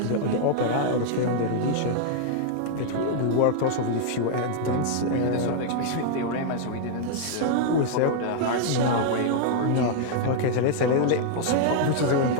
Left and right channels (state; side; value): different; both; correlation -0.01